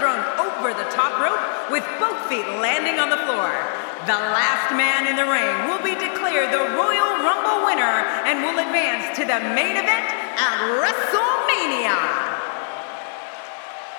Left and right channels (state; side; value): silent; right; 64 dB below the other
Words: thrown over the top rope with both feet landing on the floor. The last man in the ring will be declared the Royal Rumble winner and will advance to the main event at WrestleMania.